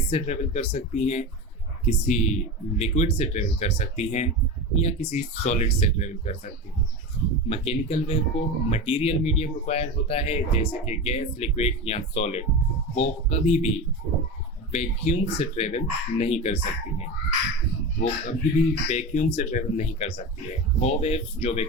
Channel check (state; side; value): normal; both; correlation 0.24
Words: से ट्रेवल कर सकती हैं, किसी लिक्विड से ट्रेवल कर सकती हैं या किसी सॉलिड से ट्रेवल कर सकती हैं। मैकेनिकल वेव को मटेरियल मीडियम रिक्वायर होता है जैसे कि गैस, लिक्विड या सॉलिड। वो कभी भी वैक्यूम से ट्रेवल नहीं कर सकती हैं। वो वेव्स जो